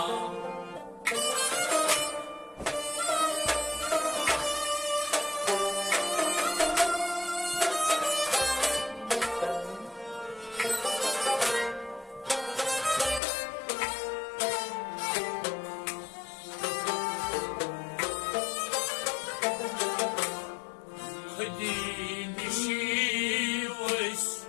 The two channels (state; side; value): drops out; right; at 13.2 s